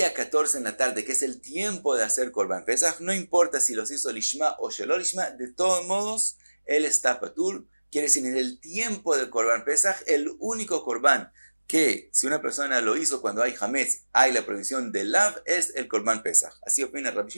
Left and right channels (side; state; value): both; inverted; correlation -1.00